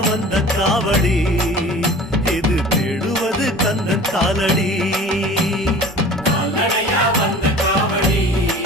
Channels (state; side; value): normal; both; correlation 0.42